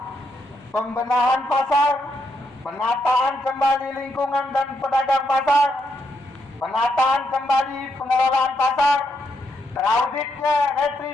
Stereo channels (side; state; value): both; normal; correlation 0.79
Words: pembenahan pasar, penataan kembali lingkungan dan pedagang pasar, penataan kembali pengelolaan pasar, terauditnya